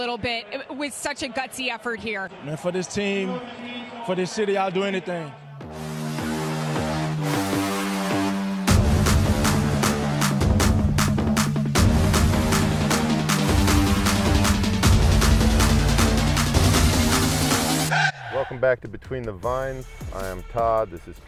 bit with such a gutsy effort here. Man, for this team, for this city, I'll do anything. Welcome back to Between the Vines. I am Todd, this is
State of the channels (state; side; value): identical; both; correlation 1.00